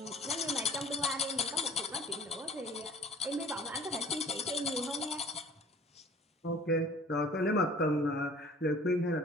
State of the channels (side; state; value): both; normal; correlation 0.48